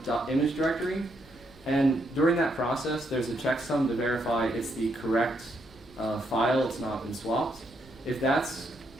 image directory. And during that process, there's a checksum to verify it's the correct file, it's not been swapped. If that's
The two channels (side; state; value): both; normal; correlation 0.76